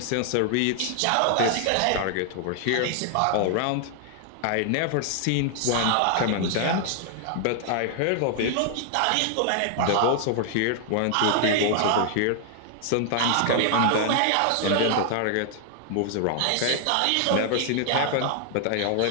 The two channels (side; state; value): both; different; correlation 0.00